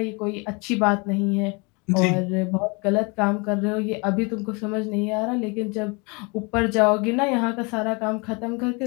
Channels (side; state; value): right; quieter; 30.0 dB